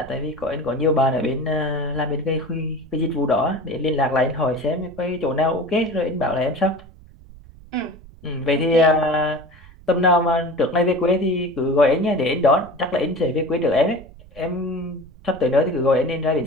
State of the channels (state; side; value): noise; right; rumble, 21 dB below the sound